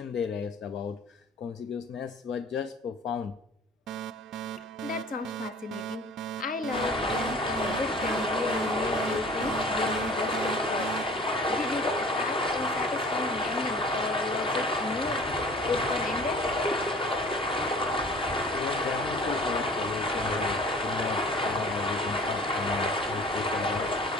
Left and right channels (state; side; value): normal; both; correlation 0.46